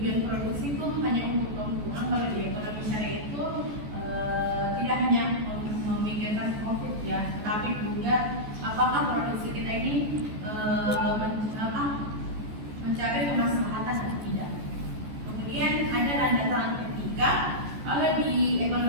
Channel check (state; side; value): late; left; 14 ms